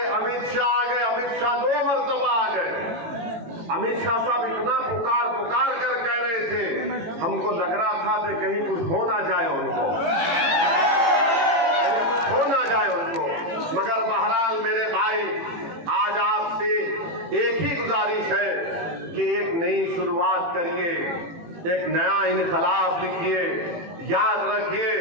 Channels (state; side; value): late; left; 18 ms